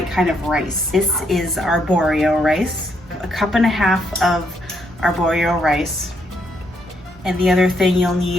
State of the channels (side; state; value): both; normal; correlation 0.75